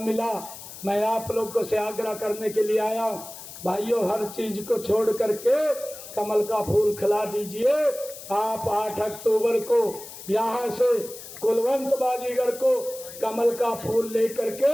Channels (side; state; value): left; noise; hiss, 14 dB below the sound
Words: मिला, मैं आप लोगों से आग्रह करने के लिए आया हूँ। भाइयों हर चीज को छोड़ करके कमल का फूल खिला दीजिए। आप 8 अक्टूबर को यहाँ से कुलवंत बाजीगर को कमल का फूल लेकर के